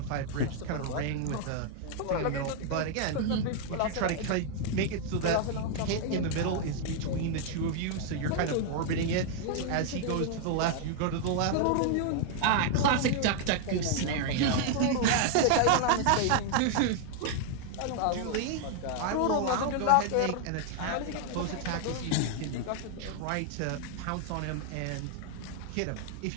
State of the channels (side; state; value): both; different; correlation 0.00